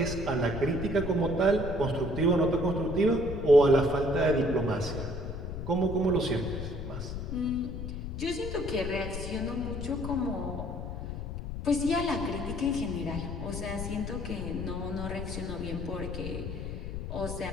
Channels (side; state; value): left; noise; rumble, 6 dB below the sound